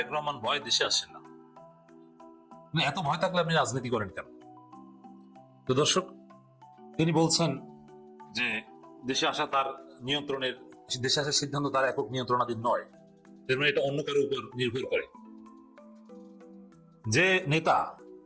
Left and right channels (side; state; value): both; identical; correlation 1.00